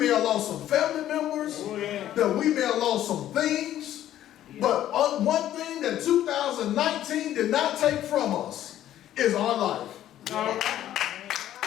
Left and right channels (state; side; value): quieter; right; 12.3 dB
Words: have lost some family members, Oh, yeah. that we may have lost some things. But on one thing that 2019 did not take from us is our life. All right.